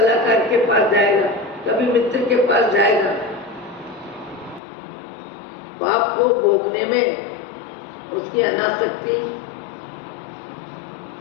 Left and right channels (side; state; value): right; drops out; at 4.6 s